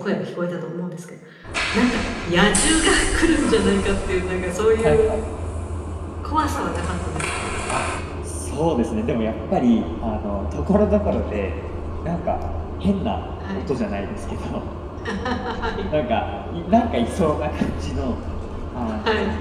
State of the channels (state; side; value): identical; both; correlation 1.00